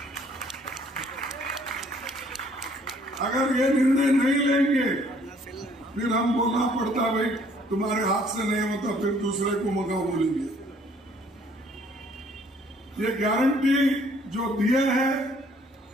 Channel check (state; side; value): normal; both; correlation 0.61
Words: अगर ये निर्णय नहीं लेंगे फिर हम बोलना पड़ता भाई तुम्हारे हाथ से नहीं होता, फिर दूसरे को मगा बोलेंगे। ये गारंटी जो दिए है